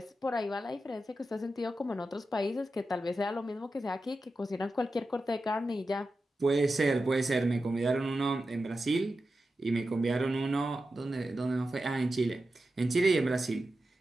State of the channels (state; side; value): normal; both; correlation 0.91